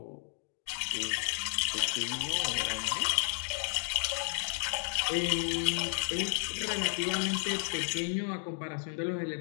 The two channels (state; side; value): silent; right; digital silence